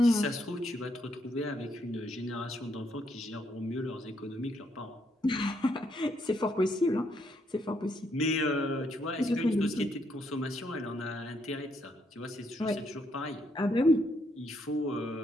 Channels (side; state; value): both; normal; correlation 0.75